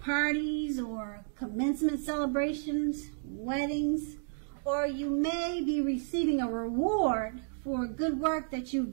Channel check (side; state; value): left; silent; digital silence